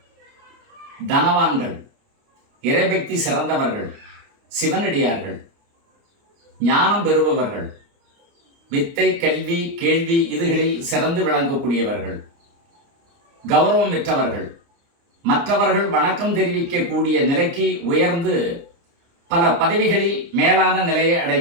தனவான்கள், இறைபக்தி சிறந்தவர்கள், சிவனடியார்கள், ஞானம் பெறுபவர்கள், வித்தை, கல்வி, கேள்வி இதுகளில் சிறந்து விளங்கக்கூடியவர்கள், கௌரவம் பெற்றவர்கள், மற்றவர்கள் வணக்கம் தெரிவிக்கக்கூடிய நிலைக்கு உயர்ந்து பல பதவிகளில் மேலான நிலையை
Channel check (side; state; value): left; late; 29 ms